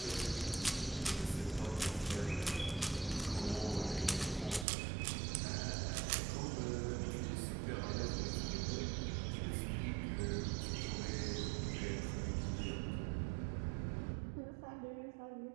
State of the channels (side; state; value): left; drops out; at 4.7 s